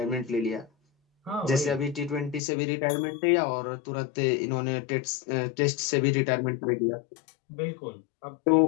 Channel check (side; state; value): right; drops out; at 2.4 s